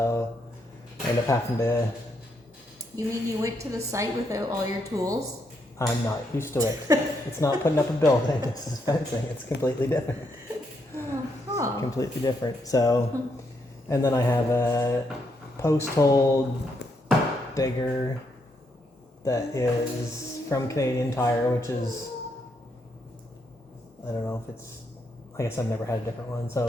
I ended up having to... You mean you went to the site without all your tools? I'm not used to it. It's not putting up a building. It's fencing. It's completely different. Completely different. So, and then I have a post hole digger that is from Canadian Tire, which is, I don't know if it's, I guess I've never had a different one.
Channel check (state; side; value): normal; both; correlation 0.78